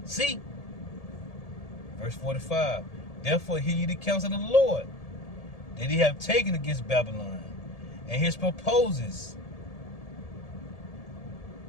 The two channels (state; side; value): late; right; 1.7 ms